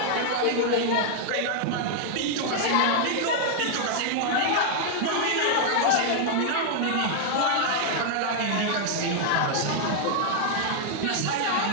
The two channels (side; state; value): both; different; correlation 0.00